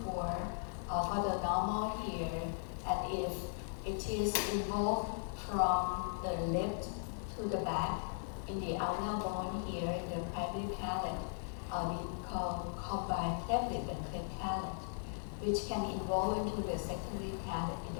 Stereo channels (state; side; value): silent; right; 52 dB below the other